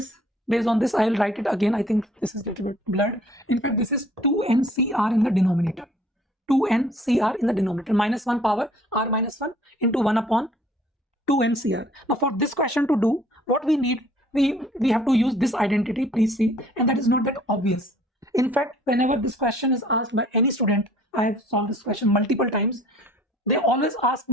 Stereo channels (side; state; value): both; normal; correlation 0.55